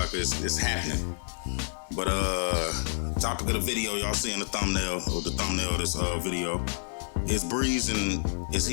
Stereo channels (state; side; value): silent; right; 59 dB below the other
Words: it's happening. But topic of the video, y'all seeing the thumbnail of this video, is Breeze, and